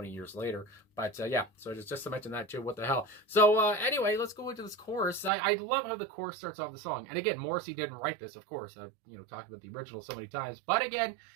years later. But yeah, so just to mention that too. What the hell? So anyway, let's go into this chorus. I love how the chorus starts off the song. And again, Morrissey didn't write this, of course. I've talked about the original so many times, but again,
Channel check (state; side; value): drops out; left; at 5.3 s